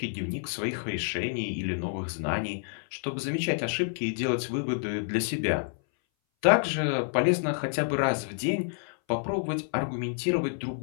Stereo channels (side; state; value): right; silent; 58 dB below the other